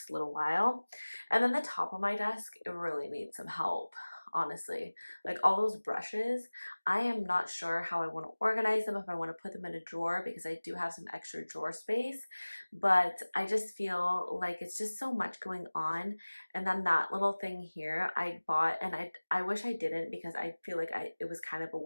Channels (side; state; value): both; inverted; correlation -1.00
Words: little while. And then the top of my desk, it really needs some help, honestly. Like all those brushes, I am not sure how I want to organize them, if I want to put them in a drawer, because I do have some extra drawer space, but I just feel like it's just so much going on. And then that little thing here I bought, and I wish I didn't, because I feel like it was kind of a